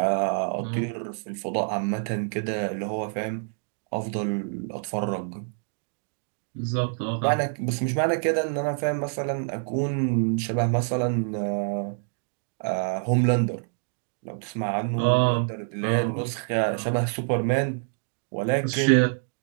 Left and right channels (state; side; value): silent; left; 60 dB below the other